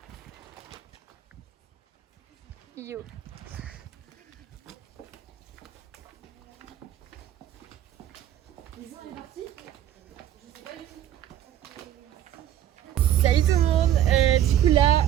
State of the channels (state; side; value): quieter; left; 11.4 dB